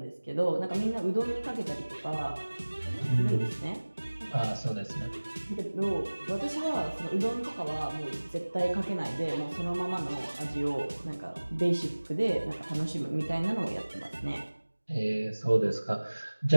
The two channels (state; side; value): inverted; both; correlation -1.00